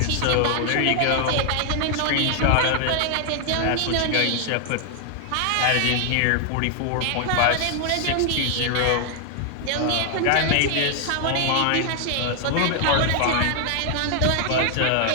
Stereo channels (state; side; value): different; both; correlation 0.00